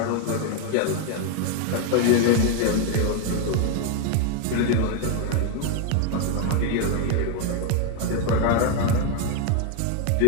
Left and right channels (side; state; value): both; different; correlation 0.01